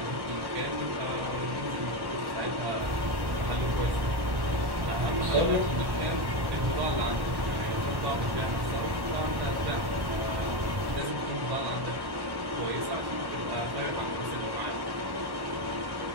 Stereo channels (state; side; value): late; left; 1.1 ms